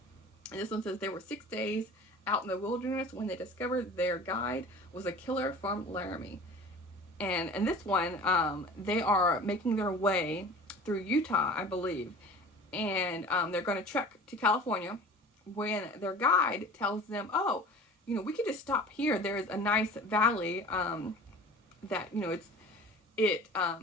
And this one says, there were 6 days out in the wilderness when they discovered their guide was a killer from Laramie. And in this one, they are making their way through Utah, I believe. And they're going to trek to California when their guide tells them, we could just stop here. There's a nice valley that, it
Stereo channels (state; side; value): normal; both; correlation 0.40